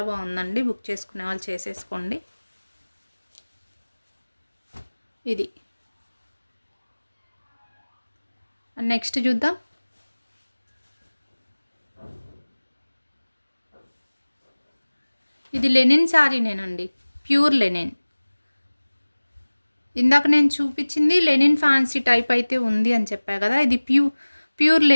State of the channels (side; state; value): both; inverted; correlation -1.00